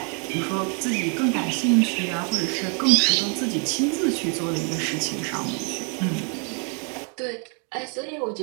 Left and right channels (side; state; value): left; quieter; 36.1 dB